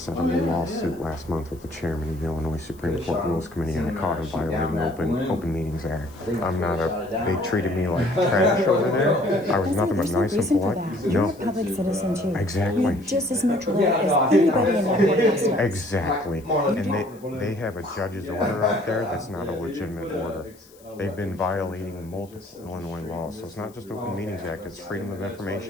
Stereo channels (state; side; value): noise; left; hiss, 27 dB below the sound